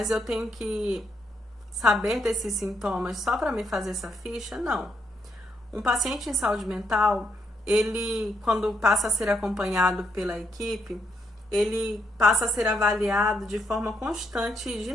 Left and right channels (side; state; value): both; normal; correlation 0.77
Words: eu tenho que saber desses sintomas só para me fazer essa ficha? Não. Um paciente em saúde mental, ele, quando passa a ser acompanhado pela equipe, ele passa a ser avaliado de forma constante e